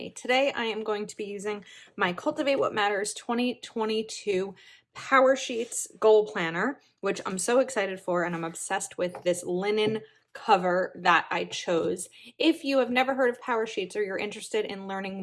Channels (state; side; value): identical; both; correlation 1.00